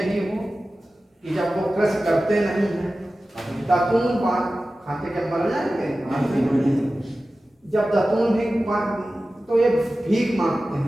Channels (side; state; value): both; normal; correlation 0.95